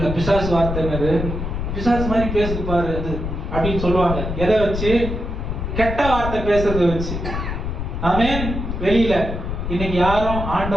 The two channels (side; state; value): left; noise; rumble, 4 dB below the sound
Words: பிசாசு வார்த்தை என்னது? பிசாசு மாதிரி பேசுது பாரு அது அப்படின்னு சொல்லுவாங்க. எதை வச்சு? கெட்ட வார்த்தை பேசுறத வச்சு. ஆமென். வெளியில இன்னைக்கு யாரும்